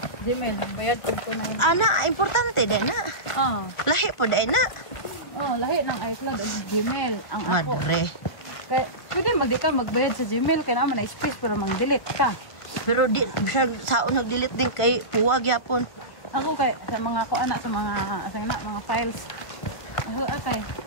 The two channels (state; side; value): late; right; 1.5 ms